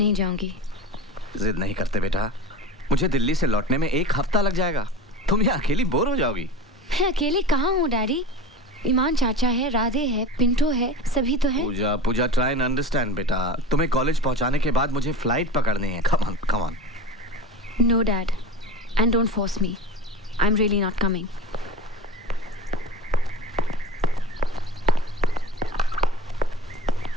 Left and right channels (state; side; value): normal; both; correlation 0.32